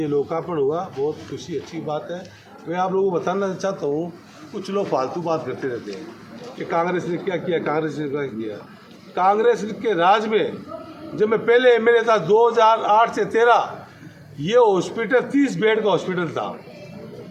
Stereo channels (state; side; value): identical; both; correlation 1.00